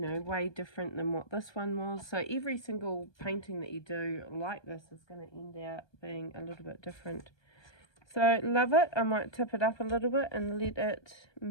know, way different than what this one was. So every single painting that you do like this is going to end out being a little bit different. So love it. I might tip it up a little bit and let it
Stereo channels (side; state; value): right; late; 1.2 ms